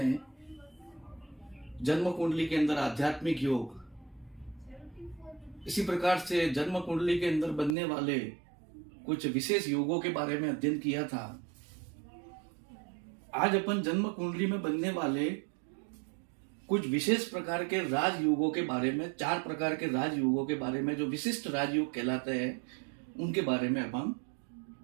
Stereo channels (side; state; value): left; drops out; at 7.8 s